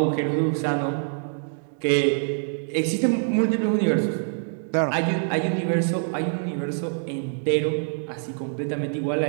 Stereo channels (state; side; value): silent; left; digital silence